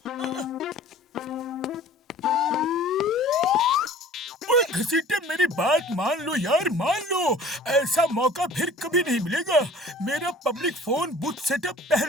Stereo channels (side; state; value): both; normal; correlation 0.46